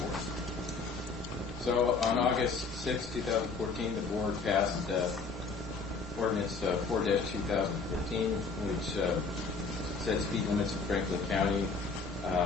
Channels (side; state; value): right; quieter; 4.5 dB